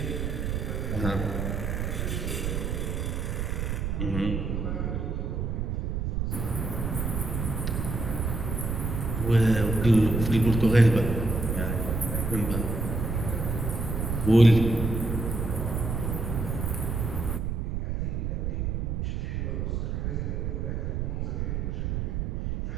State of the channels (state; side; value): noise; right; rumble, 1 dB below the sound